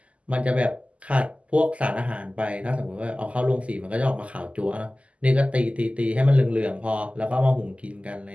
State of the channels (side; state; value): left; late; 0.062 ms